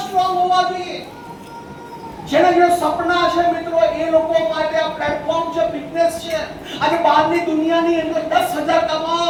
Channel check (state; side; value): identical; both; correlation 1.00